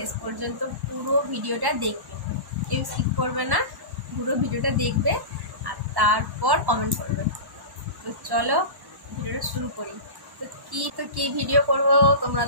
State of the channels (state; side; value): late; left; 1.1 ms